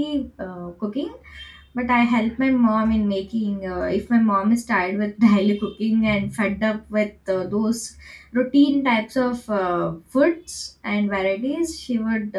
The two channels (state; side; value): identical; both; correlation 1.00